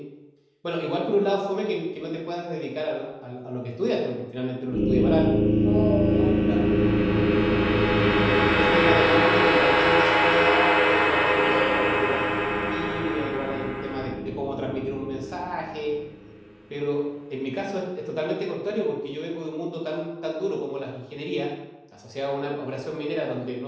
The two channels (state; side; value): identical; both; correlation 1.00